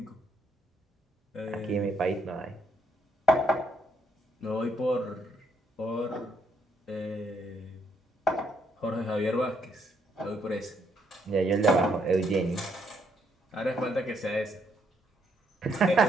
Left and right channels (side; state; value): both; normal; correlation 0.72